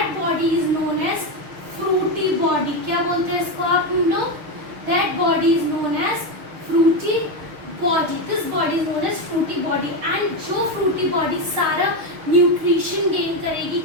body is known as fruity body. क्या बोलते हैं इसको आप लोग, that body is known as fruity body. This body is known as fruity body. And जो फ्रूटी बॉडी सारा न्यूट्रिशन गेन करेगी,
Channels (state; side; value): late; left; 6.5 ms